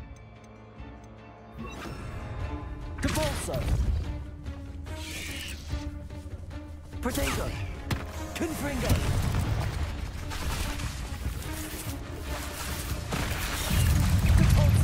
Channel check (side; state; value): both; identical; correlation 1.00